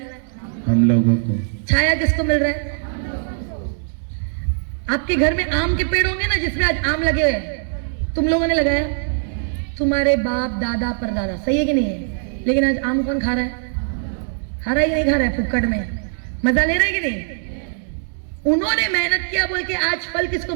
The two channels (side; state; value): left; silent; digital silence